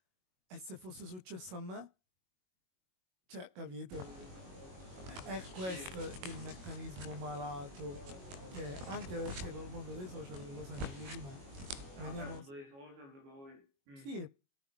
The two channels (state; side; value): late; left; 22 ms